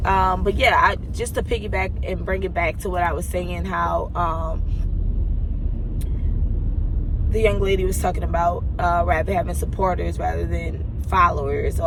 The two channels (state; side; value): identical; both; correlation 1.00